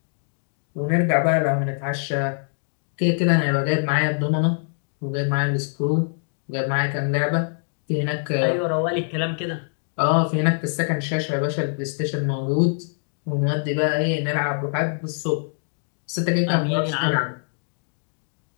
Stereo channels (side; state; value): right; silent; digital silence